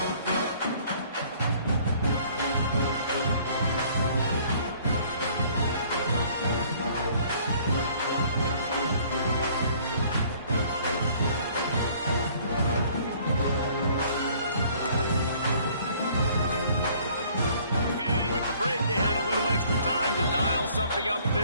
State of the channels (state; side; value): inverted; both; correlation -0.57